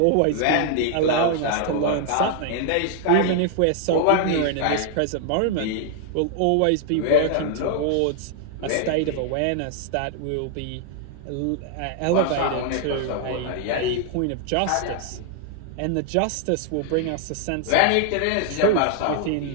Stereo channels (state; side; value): different; both; correlation 0.00